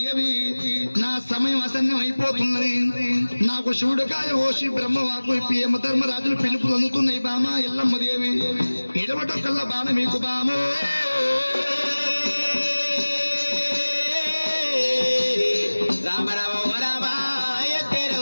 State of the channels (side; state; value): both; inverted; correlation -1.00